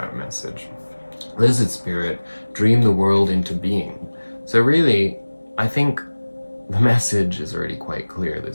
message. Lizard Spirit, dream the world into being. So really, I think the message is already quite clear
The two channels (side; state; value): both; inverted; correlation -1.00